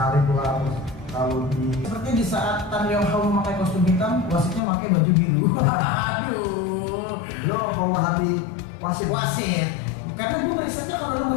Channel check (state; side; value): drops out; right; at 4.6 s